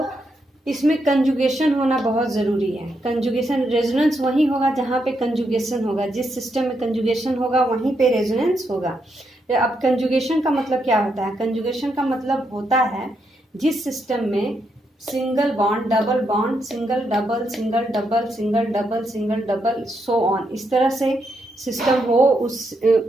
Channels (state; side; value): normal; both; correlation 0.80